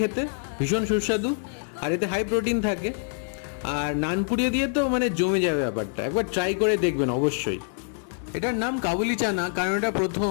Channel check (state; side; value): silent; right; 61 dB below the other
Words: খেতে, ভীষণ সুস্বাদু। আর এতে হাই প্রোটিন থাকে। আর নানপুরি দিয়ে তো মানে জমে যাবে ব্যাপারটা, একবার ট্রাই করে দেখবেন অবশ্যই। এটার নাম কাবুলি চানা কারণ এটা